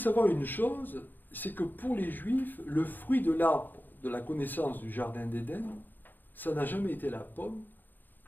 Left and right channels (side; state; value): right; late; 0.089 ms